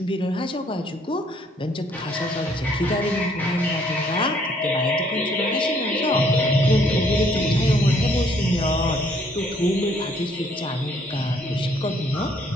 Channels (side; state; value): both; normal; correlation 0.65